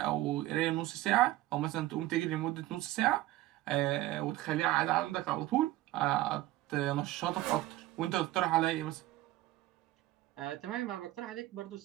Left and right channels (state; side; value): quieter; left; 16.5 dB